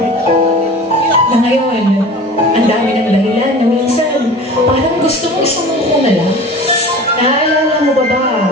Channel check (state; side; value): normal; both; correlation 0.39